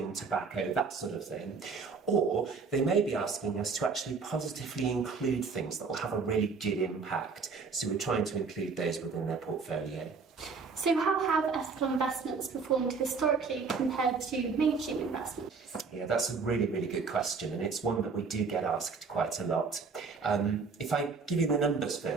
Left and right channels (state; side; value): quieter; left; 4.9 dB